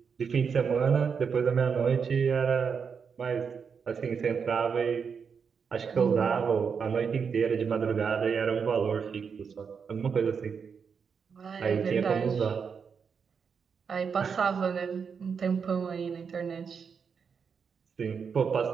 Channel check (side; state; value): left; quieter; 6.2 dB